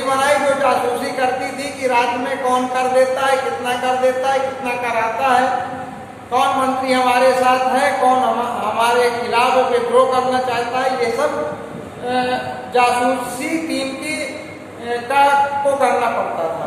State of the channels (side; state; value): both; identical; correlation 1.00